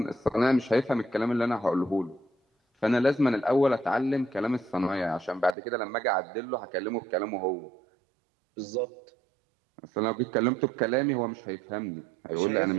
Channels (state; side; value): drops out; left; at 5.6 s